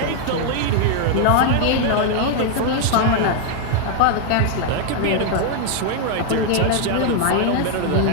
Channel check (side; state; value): both; different; correlation 0.00